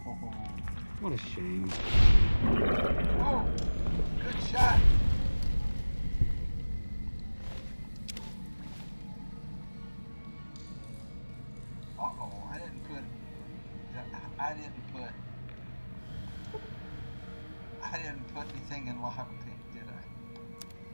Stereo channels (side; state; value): both; inverted; correlation -1.00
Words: What a shame. Oh, good shot. Uh-oh, I didn't put anything in lockpick, did I?